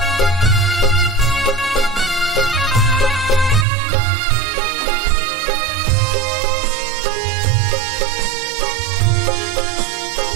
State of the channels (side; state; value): left; drops out; at 3.7 s